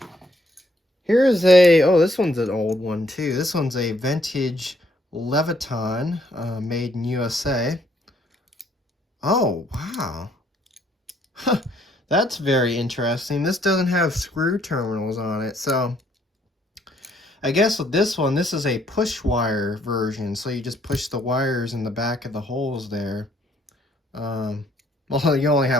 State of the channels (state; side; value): normal; both; correlation 0.68